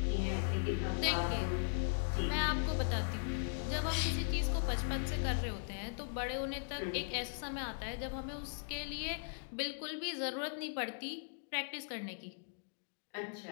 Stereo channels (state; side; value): silent; right; digital silence